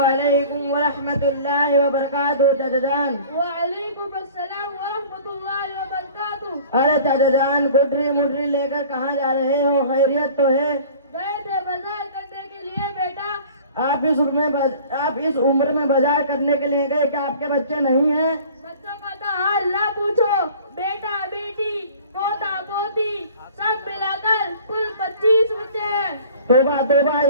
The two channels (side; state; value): both; inverted; correlation -0.46